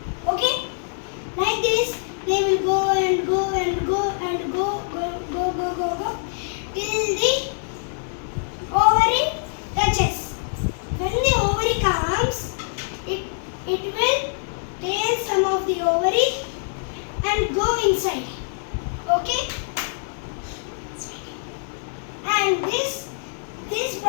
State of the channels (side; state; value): right; silent; 56 dB below the other